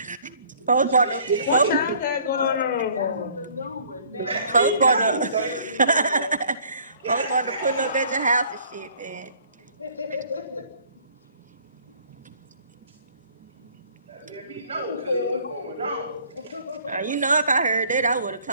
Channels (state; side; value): inverted; both; correlation -0.56